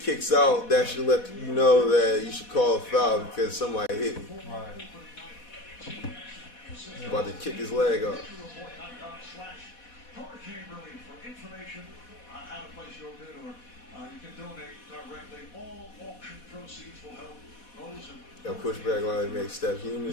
out, that should let you know that you should call a foul because somebody hit him. Right. About to kick his leg off. That pushback line makes Steph human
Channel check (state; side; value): late; right; 4.1 ms